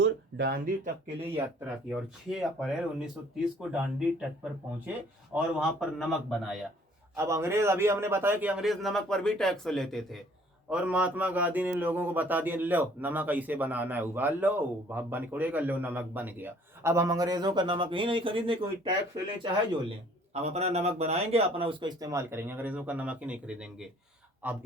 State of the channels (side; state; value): both; normal; correlation 0.57